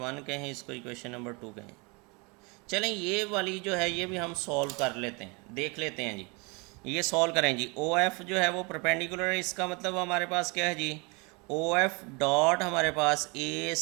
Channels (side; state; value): left; quieter; 30.0 dB